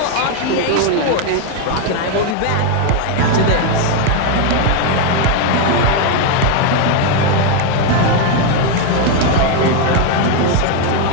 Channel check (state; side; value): different; both; correlation 0.01